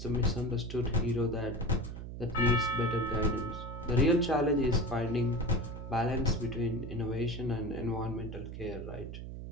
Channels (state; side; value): noise; right; hum, 9 dB below the sound